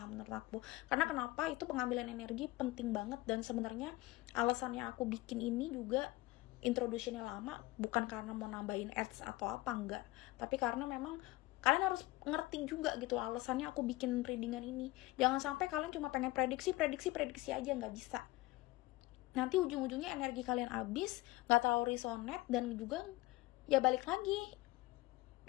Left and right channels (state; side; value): quieter; right; 19.7 dB